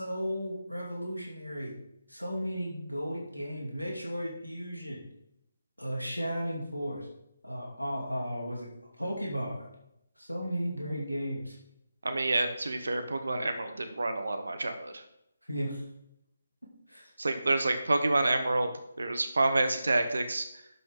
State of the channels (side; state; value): both; inverted; correlation -0.92